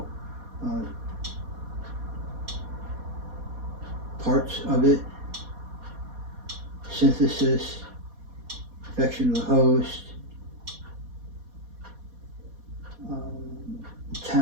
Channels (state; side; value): late; left; 4.2 ms